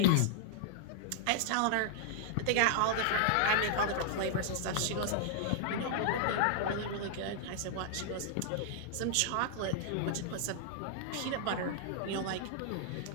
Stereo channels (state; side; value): different; both; correlation -0.01